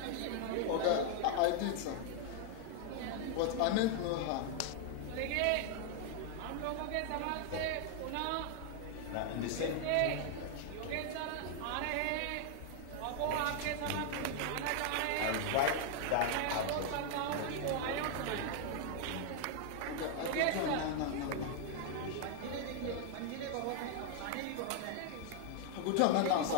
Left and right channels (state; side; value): different; both; correlation 0.00